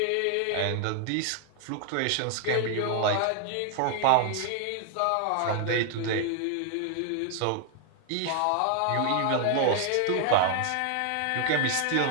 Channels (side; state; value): both; different; correlation 0.00